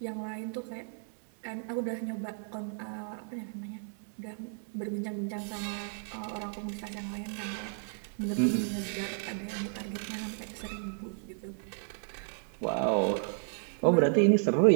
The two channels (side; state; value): left; silent; 56 dB below the other